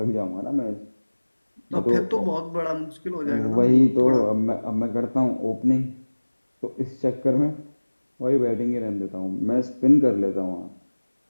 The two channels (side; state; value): both; inverted; correlation -1.00